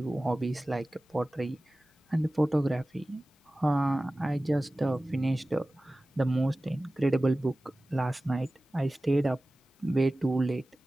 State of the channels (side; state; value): both; normal; correlation 0.97